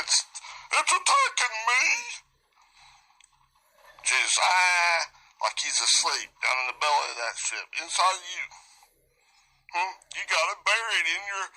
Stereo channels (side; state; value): both; identical; correlation 1.00